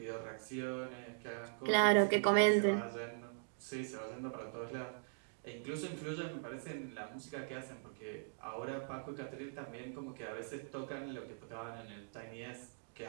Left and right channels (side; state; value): left; silent; digital silence